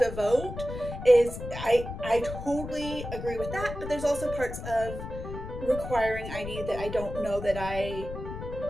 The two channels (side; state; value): left; noise; rumble, 9 dB below the sound